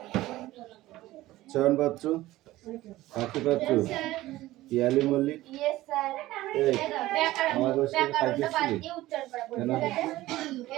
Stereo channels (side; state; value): left; quieter; 16.7 dB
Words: চয়ন পাত্র, পাখি পাত্র, পিয়ালি মল্লিক, আমার